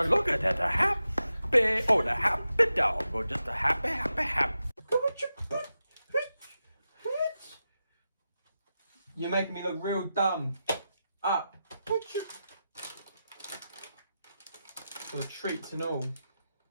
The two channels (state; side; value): inverted; both; correlation -0.90